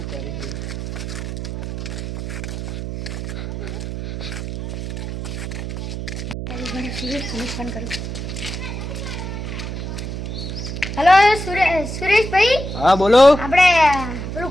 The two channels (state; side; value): noise; right; hum, 6 dB below the sound